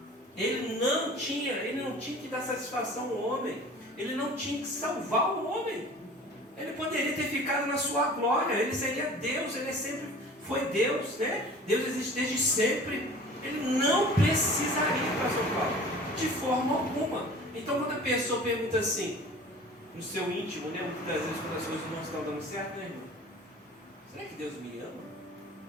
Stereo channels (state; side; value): normal; both; correlation 0.43